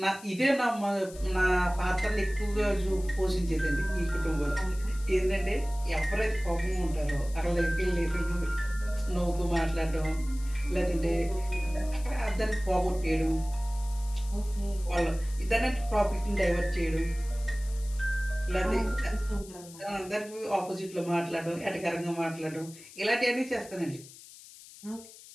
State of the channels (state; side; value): noise; left; hiss, 19 dB below the sound